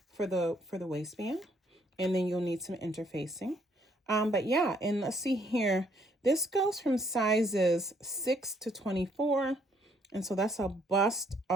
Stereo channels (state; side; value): normal; both; correlation 0.67